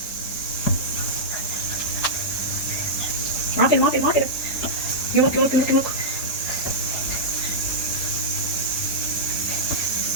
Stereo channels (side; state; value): right; late; 4.8 ms